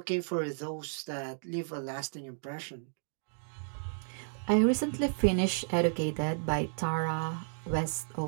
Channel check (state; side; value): silent; left; digital silence